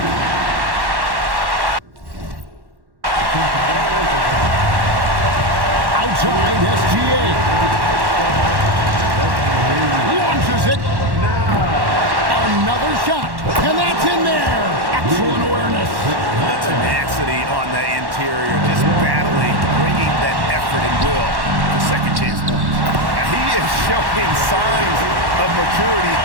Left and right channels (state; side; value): late; left; 1.1 ms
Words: Outside SGA. Launches it. Another shot. And that's in there. Excellent awareness. The tenacity on the interior, just battling, bringing that effort and will for second chance points. Now, he is showing signs of maturity